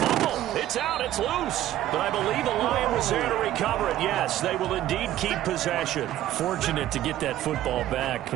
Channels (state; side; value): quieter; left; 13.3 dB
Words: It's out, it's loose. But I believe the Lion was there to recover it. Yes, they will indeed keep possession. Fortunate to get that football back,